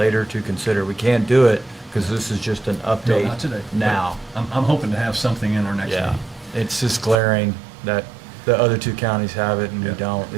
to consider. We can't do it because this is just an No, update not today. but now. I'm hoping to have something in our next Yeah, meeting. it's just glaring that the other two counties have it and we Yeah. don't.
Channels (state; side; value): drops out; left; at 7.2 s